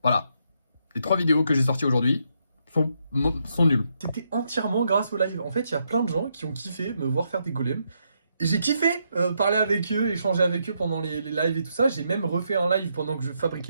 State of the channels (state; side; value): inverted; both; correlation -0.78